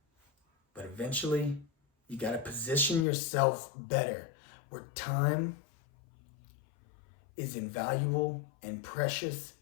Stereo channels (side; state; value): right; drops out; at 3.1 s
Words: But eventually, you got to position yourself better where time is invaluable and precious